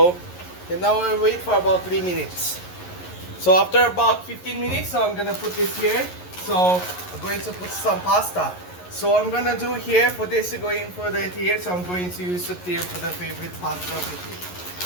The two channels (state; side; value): late; right; 11 ms